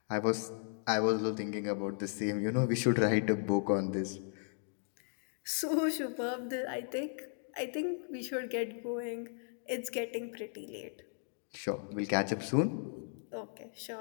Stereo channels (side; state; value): right; silent; 54 dB below the other